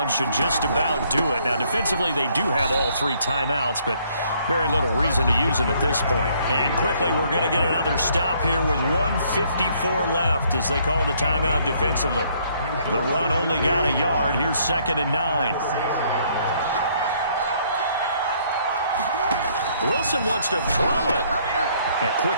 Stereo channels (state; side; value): inverted; both; correlation -0.65